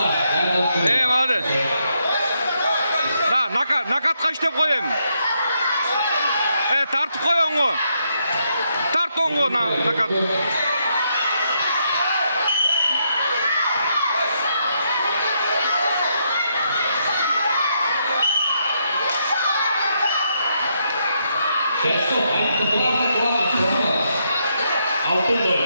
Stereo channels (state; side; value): inverted; both; correlation -0.78